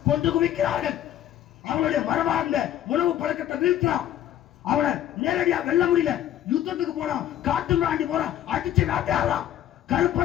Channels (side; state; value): right; quieter; 11.7 dB